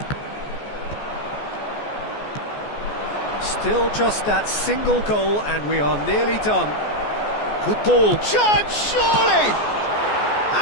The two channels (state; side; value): late; right; 14 ms